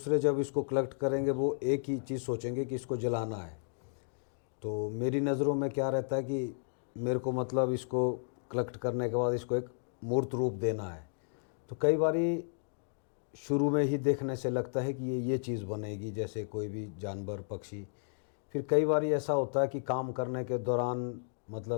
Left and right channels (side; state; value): right; silent; digital silence